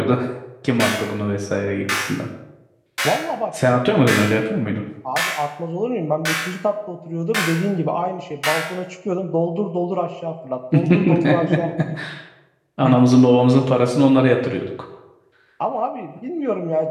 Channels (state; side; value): identical; both; correlation 1.00